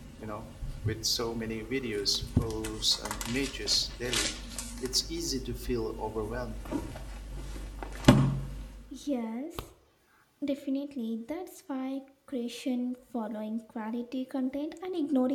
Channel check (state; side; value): identical; both; correlation 1.00